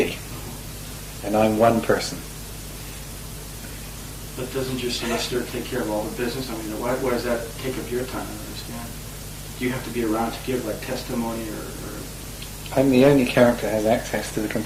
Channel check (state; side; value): identical; both; correlation 1.00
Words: And I'm one person. But doesn't your solicitor take care of all the business? I mean, why does that take up your time? I don't understand. Do you have to be around to give like testimony or... I'm the only character that has access to the